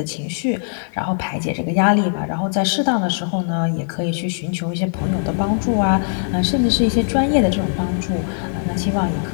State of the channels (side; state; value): right; silent; 59 dB below the other